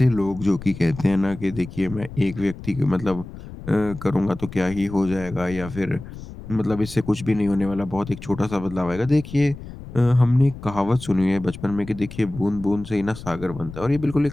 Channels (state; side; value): noise; left; rumble, 13 dB below the sound